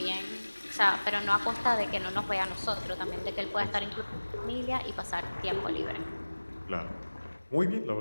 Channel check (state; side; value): inverted; both; correlation -1.00